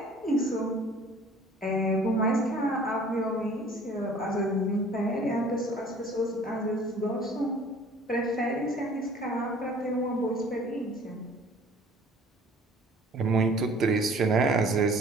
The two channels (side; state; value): both; normal; correlation 0.51